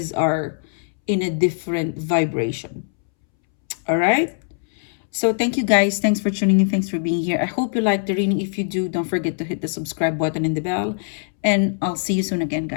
are in a different vibration. All right? So thank you guys. Thanks for tuning in. Thanks for being here. I hope you liked the reading. If you do, don't forget to hit the subscribe button and the bell. And I'll see you soon again,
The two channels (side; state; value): right; silent; 64 dB below the other